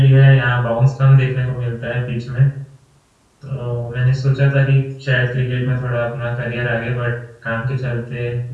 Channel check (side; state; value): both; identical; correlation 1.00